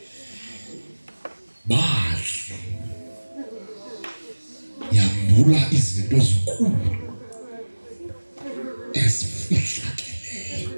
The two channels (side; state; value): both; inverted; correlation -1.00